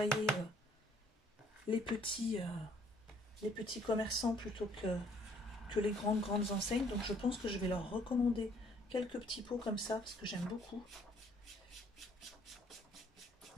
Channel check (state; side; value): normal; both; correlation 0.62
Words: les petits commerçants plutôt que les grandes enseignes. Donc je pense que je vais leur recommander quelques petits pots comme ça parce que j'aime beaucoup.